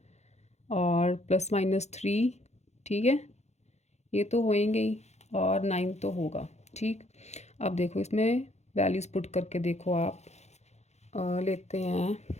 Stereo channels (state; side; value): late; right; 0.32 ms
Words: और प्लस माइनस 3, ठीक है, ये तो होएंगे ही, और 9 तो होगा, ठीक। अब देखो इसमें वैल्यूज़ पुट करके देखो आप। लेते हैं